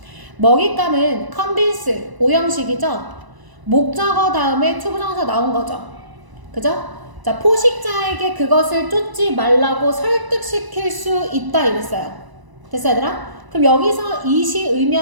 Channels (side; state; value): left; late; 1.0 ms